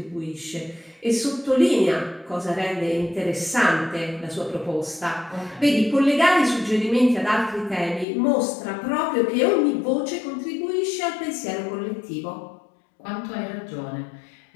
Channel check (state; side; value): drops out; right; at 8.1 s